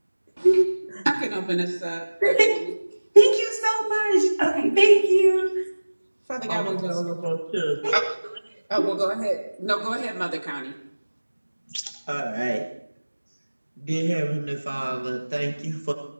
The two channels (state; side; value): inverted; both; correlation -1.00